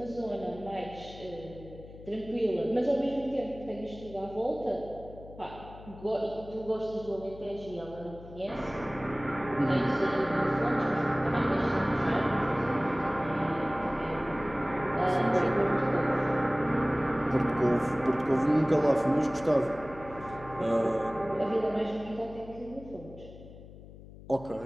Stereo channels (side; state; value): left; noise; hum, 17 dB below the sound